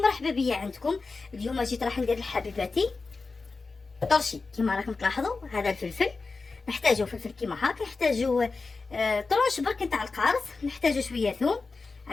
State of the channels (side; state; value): right; quieter; 4.1 dB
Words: بيا عندكم. اليوم جيت راح ندير لحبيباتي طرشي. كما راكم تلاحظوا هذا الفلفل نحتاجو فلفل كيما هاك، نحتاجو طرش برك نتاع القارص، نحتاجو شويه ثوم،